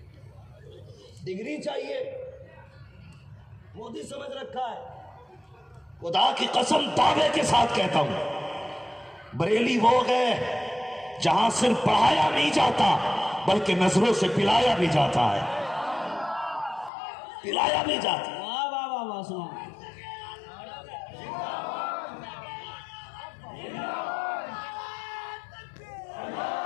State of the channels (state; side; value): drops out; right; at 16.9 s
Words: ڈگری چاہیے، مودی سمجھ رکھا ہے۔ خدا کی قسم دعوے کے ساتھ کہتا ہوں، بریلی وہ گئے جہاں صرف پڑھایا نہیں جاتا بلکہ نظروں سے پلایا بھی جاتا ہے، پلایا بھی جاتا ہے۔ واہ واہ واہ واہ سنا۔